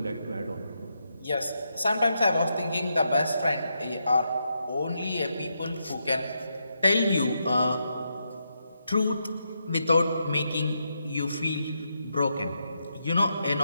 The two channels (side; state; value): both; inverted; correlation -0.82